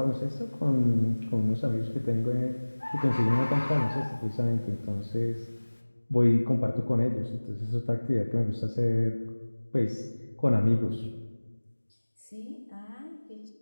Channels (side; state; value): both; inverted; correlation -1.00